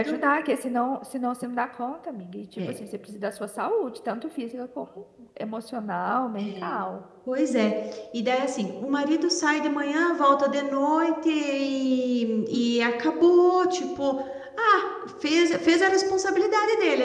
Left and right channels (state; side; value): identical; both; correlation 1.00